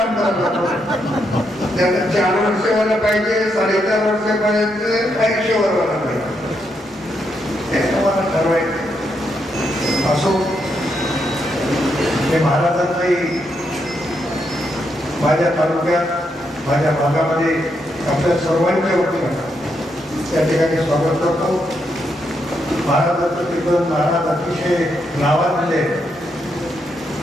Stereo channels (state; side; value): normal; both; correlation 0.80